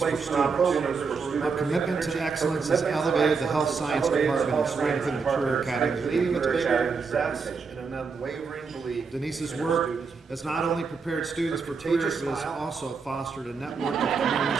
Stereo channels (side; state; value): left; quieter; 5.1 dB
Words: students. Her commitment to excellence has elevated the health science department and strengthened the career academy. leading to bigger success and an unwavering belief. Denise's work has not only prepared students for careers, but has also fostered a network of community